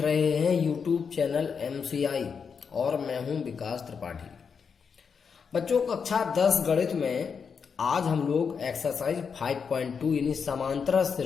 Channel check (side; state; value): right; quieter; 6.1 dB